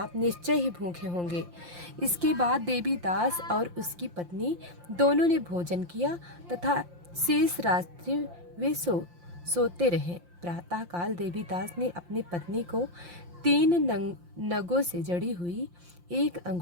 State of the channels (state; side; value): late; left; 5.7 ms